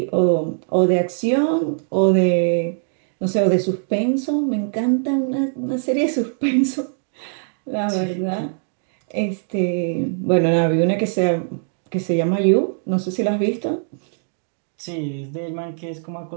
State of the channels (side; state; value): left; silent; digital silence